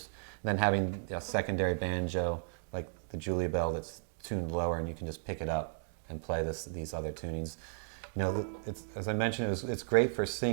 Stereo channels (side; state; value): left; silent; digital silence